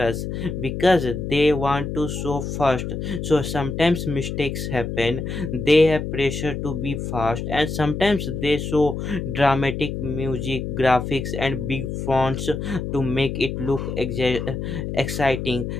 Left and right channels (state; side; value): noise; left; hum, 4 dB below the sound